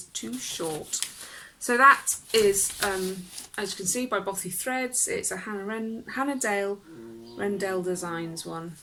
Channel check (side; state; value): both; identical; correlation 1.00